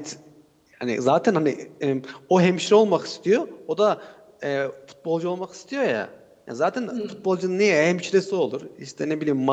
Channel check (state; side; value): identical; both; correlation 1.00